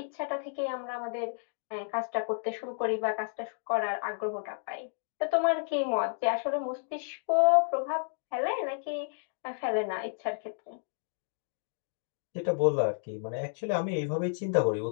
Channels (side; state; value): right; silent; digital silence